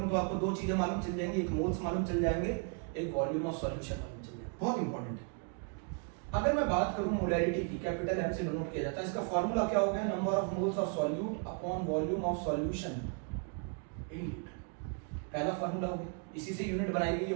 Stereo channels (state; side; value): quieter; left; 37.7 dB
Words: तो आपको 2 चीजें मालूम चल जाएंगी, एक मोल्स मालूम चल जाएंगे, एक वॉल्यूम ऑफ सॉल्यूशन मालूम चल जाएगा। बहुत इंपॉर्टेंट है। अगर मैं बात करूं मोलैरिटी की, कैपिटल एम से डिनोट किया जाता है, इसका फार्मूला क्या हो गया, number of moles of solute upon volume of solution in litre. पहला फार्मूला हो गया, इसी से यूनिट बनाई गई है